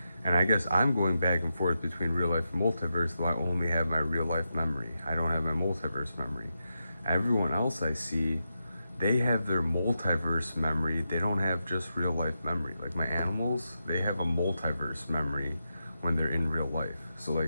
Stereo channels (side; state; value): both; inverted; correlation -0.87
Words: And I guess I'm going back and forth between real life and multiverse, though I only have my real life memory. I don't have my multiverse memory. Everyone else I see, they have their multiverse memory. They don't have just real life memory. Like my animals, they have a multiverse memory when they're in real life. So